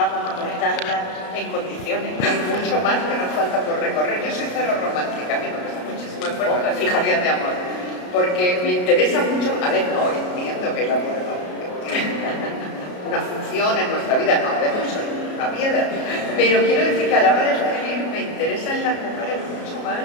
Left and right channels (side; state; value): right; late; 33 ms